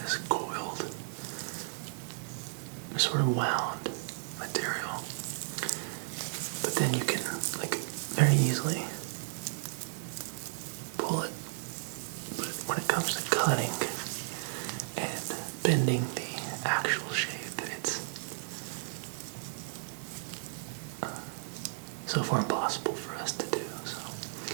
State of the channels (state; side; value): silent; left; digital silence